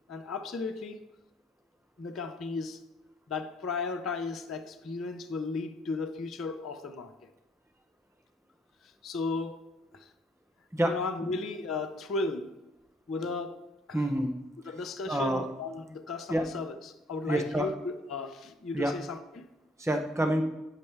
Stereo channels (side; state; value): both; normal; correlation 0.65